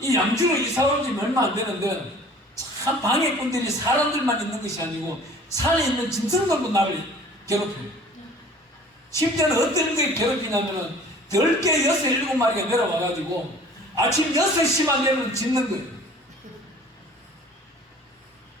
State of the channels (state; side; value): normal; both; correlation 0.48